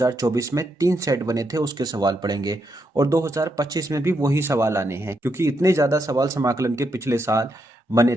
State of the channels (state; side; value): normal; both; correlation 0.80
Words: में 3 सेट बने थे उसके सवाल पढ़ेंगे और 2025 में भी वही सवाल आने हैं, क्योंकि इतने ज़्यादा सवाल समाकलन के पिछले साल बने